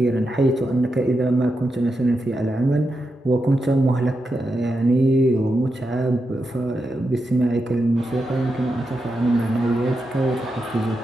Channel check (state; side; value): normal; both; correlation 0.87